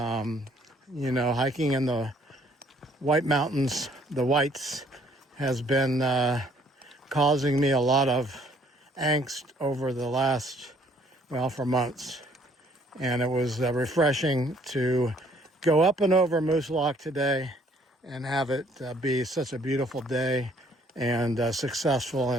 know, hiking in the White Mountains, the Whites, has been causing me a lot of angst over the last, well, for months. And it was refreshing to go up and over Moosilauke today and have it be such a beautiful day and successful.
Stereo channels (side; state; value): both; normal; correlation 0.62